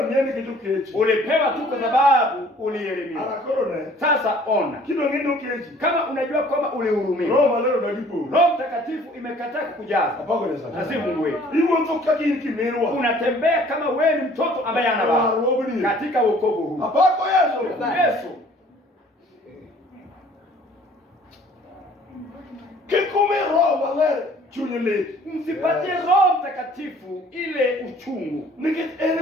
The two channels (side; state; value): both; normal; correlation 0.54